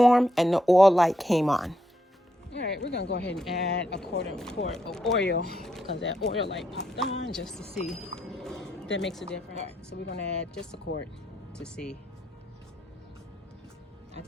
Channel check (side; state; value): both; normal; correlation 0.79